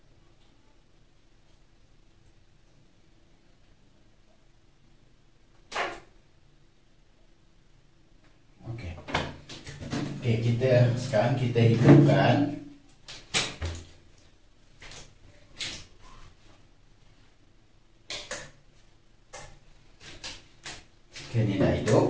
Okey, sekarang kita hidupkan. Okey, ni dah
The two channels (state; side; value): identical; both; correlation 1.00